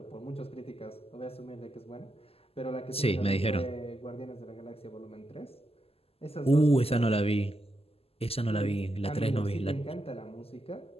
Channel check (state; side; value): late; right; 0.29 ms